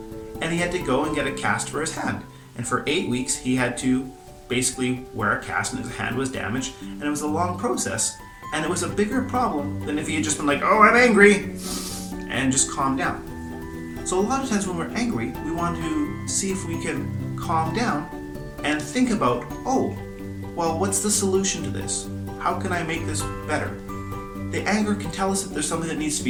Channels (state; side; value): identical; both; correlation 1.00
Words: And he had to go and get a cast for his hand. And for 8 weeks, he had to basically where a cast in his hand was damaged, and it was a long process, and it was a bigger problem than if he had just been like, oh, I'm angry, and just calm down. So a lot of times when we're angry, we want to see if we can calm down and think about, oh, well, what's the solution to this? How can I make this better? The anger can tell us that there's something that needs to